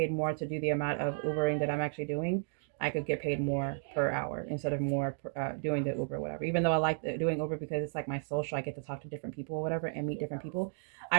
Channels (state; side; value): silent; left; digital silence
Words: more to do the amount of Ubering that I'm actually doing. I could get paid more per hour instead of more doing the Uber, whatever. Even though I like doing Uber because it's like my social, I get to talk to different people or whatever and meet different people.